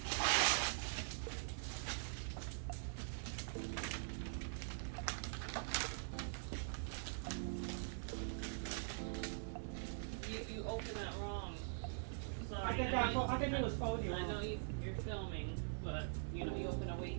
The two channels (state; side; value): silent; left; digital silence